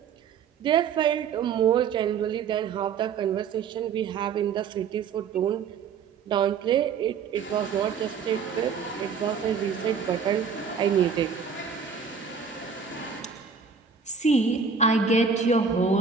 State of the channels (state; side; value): quieter; left; 6.2 dB